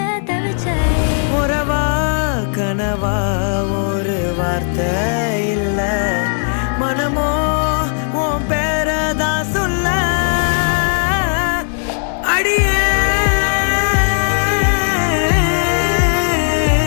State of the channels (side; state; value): right; silent; 69 dB below the other